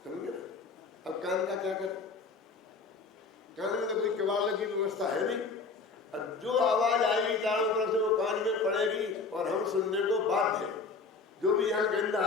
समझे ना। अब कान का क्या करें? कान में तो कोई किवाड़ लगी व्यवस्था है नहीं, और जो आवाज आएगी चारों तरफ से वो कान में पड़ेगी और हम सुनने को बाध्य हैं। जो भी यहाँ गंध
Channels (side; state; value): right; quieter; 4.4 dB